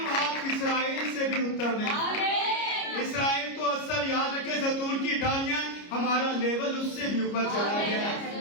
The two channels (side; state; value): right; late; 29 ms